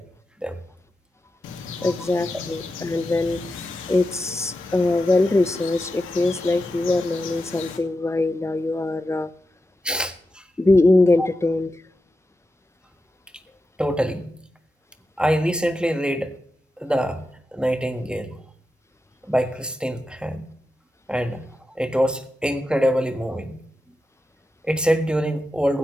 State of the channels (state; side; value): normal; both; correlation 0.89